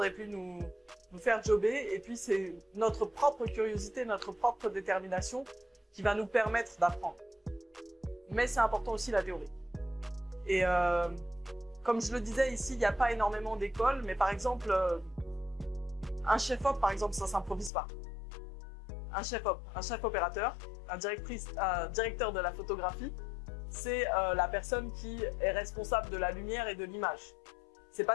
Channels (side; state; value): right; drops out; at 17.7 s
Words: et puis nous faire jobber. Et puis, c'est notre propre curiosité, notre propre détermination qui va nous permettre d'apprendre. Mais c'est important aussi la théorie. Et comme je le disais ici, il n'y a pas énormément d'écoles, mais par exemple, un chef-op, par exemple, ça ne s'improvise pas. Un chef-op, un chef-opérateur, un directeur de la photographie, c'est la personne qui est responsable de la lumière et de l'image. C'est